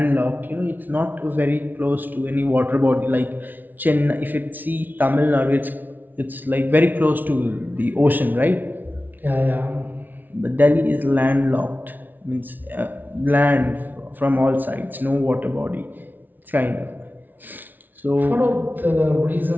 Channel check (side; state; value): left; late; 0.085 ms